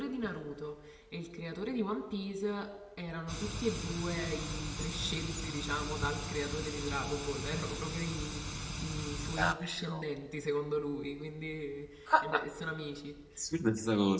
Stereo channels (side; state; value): both; identical; correlation 1.00